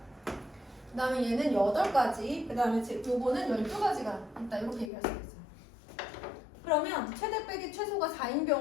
그 다음에 얘는 8가지, 그 다음에 요거는 12가지가 있다. 이렇게 얘기할 수 있어요. 그러면 최대 빼기 최소가 4인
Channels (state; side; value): drops out; right; at 4.9 s